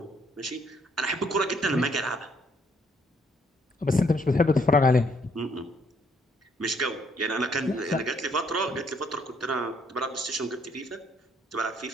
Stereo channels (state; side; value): normal; both; correlation 0.68